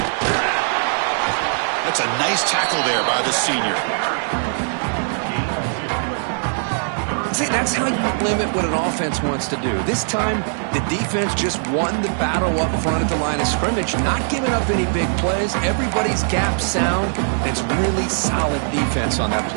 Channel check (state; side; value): silent; left; 65 dB below the other